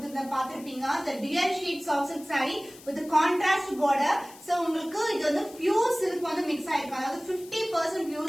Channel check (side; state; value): left; noise; hiss, 20 dB below the sound